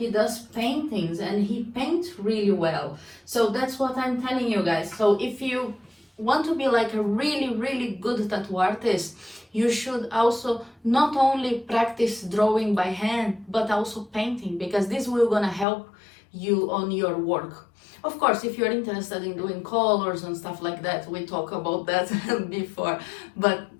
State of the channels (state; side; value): drops out; right; at 15.7 s